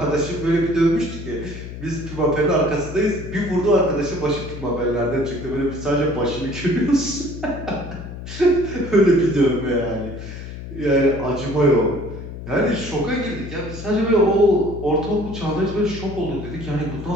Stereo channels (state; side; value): noise; left; hum, 10 dB below the sound